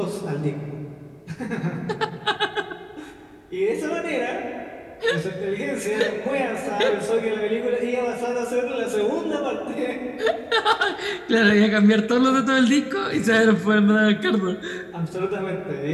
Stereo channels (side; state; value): both; identical; correlation 1.00